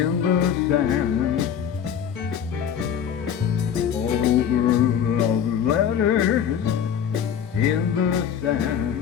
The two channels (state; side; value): quieter; right; 8.5 dB